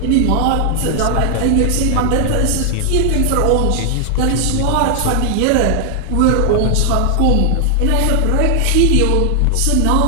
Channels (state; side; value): different; both; correlation 0.00